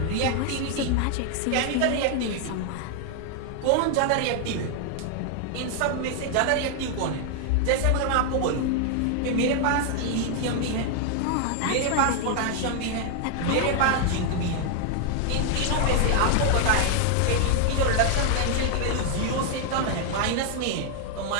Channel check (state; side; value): different; both; correlation 0.00